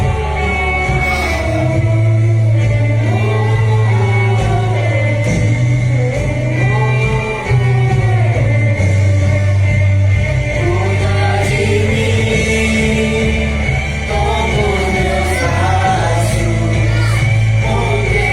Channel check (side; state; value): right; noise; rumble, 20 dB below the sound